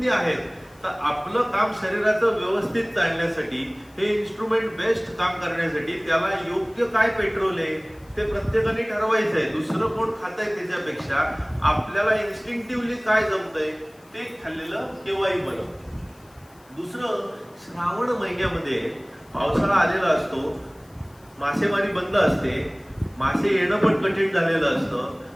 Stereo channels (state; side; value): noise; left; hiss, 30 dB below the sound